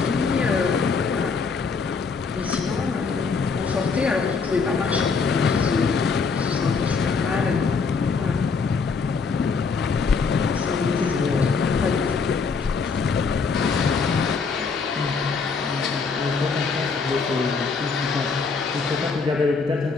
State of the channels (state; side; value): quieter; right; 5.0 dB